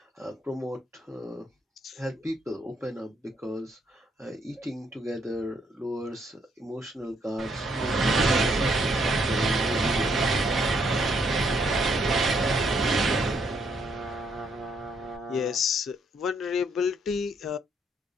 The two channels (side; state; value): both; normal; correlation 0.72